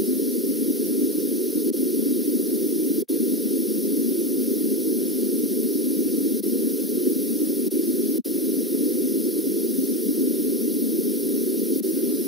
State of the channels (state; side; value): normal; both; correlation 0.17